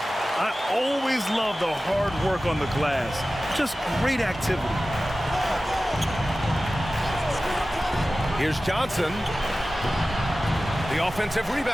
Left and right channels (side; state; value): both; normal; correlation 0.95